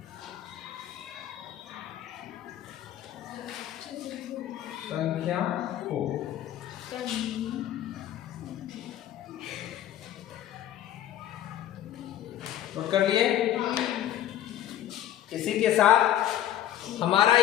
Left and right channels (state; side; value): quieter; right; 12.2 dB